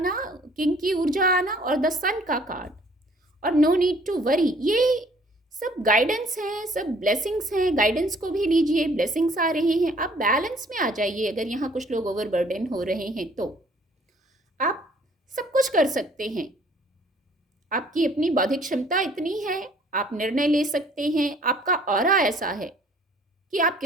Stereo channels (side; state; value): both; normal; correlation 0.58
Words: किंग की ऊर्जा आना, और द सन का कार्ड, और नो नीड टू वरी, ये सब गाइडेंस है, सब ब्लेसिंग्स हैं। गाइडेंस को भी लीजिए, ब्लेसिंग्स आ रहे हैं, आप बैलेंस में आ जाइए। अगर यहाँ कुछ लोग ओवरबर्डन हो रहे हैं तो आप सब कुछ कर सकते हैं, आपकी अपनी बौद्धिक क्षमता इतनी है, आप निर्णय ले सकते हैं, आपका ऑरा ऐसा है कि आप